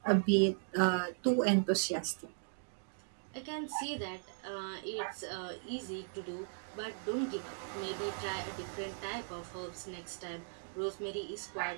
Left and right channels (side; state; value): left; silent; digital silence